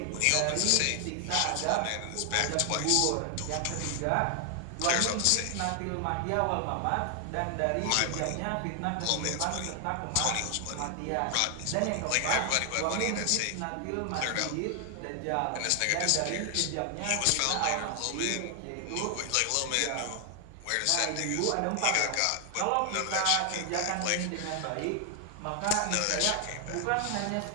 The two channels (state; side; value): different; both; correlation 0.00